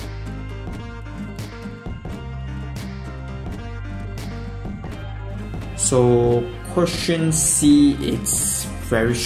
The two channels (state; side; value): identical; both; correlation 1.00